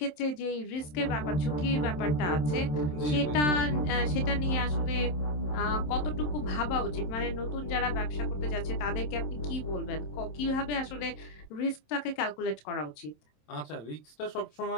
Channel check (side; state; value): right; late; 27 ms